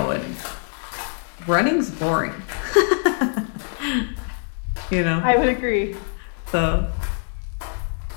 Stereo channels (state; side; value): silent; right; 62 dB below the other